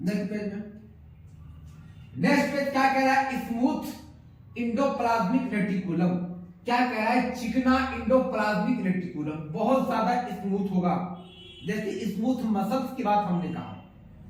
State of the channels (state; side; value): identical; both; correlation 1.00